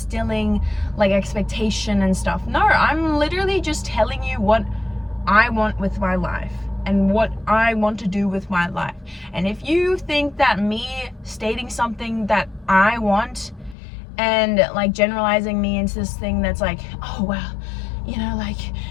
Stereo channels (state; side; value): drops out; right; at 13.8 s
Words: like expectation and stuff. No, I'm literally just telling you what I want with my life and what I want to do with my life. And if you think that me stating something that I want and like generalizing me into this thing that's like, oh well, you know, like